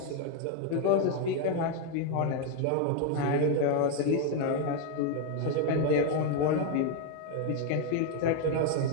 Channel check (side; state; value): both; different; correlation 0.01